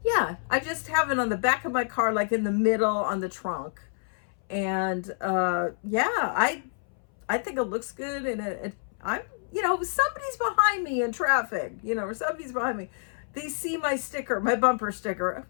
yeah, I just have it on the back of my car, like in the middle on the trunk. And yeah, I think it looks good, and I'm, somebody's behind me in traffic, or somebody's behind me. They see my sticker, my bumper sticker.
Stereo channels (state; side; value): silent; right; 59 dB below the other